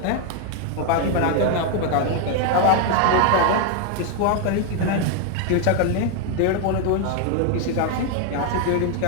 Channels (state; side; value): different; both; correlation 0.01